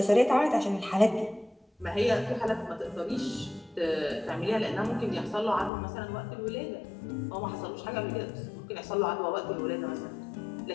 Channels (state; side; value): drops out; right; at 5.7 s